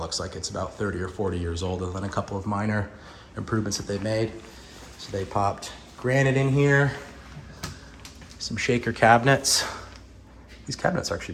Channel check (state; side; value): identical; both; correlation 1.00